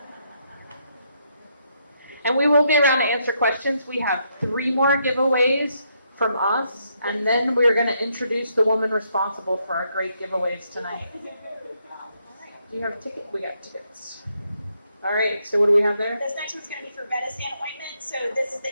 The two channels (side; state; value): both; inverted; correlation -0.76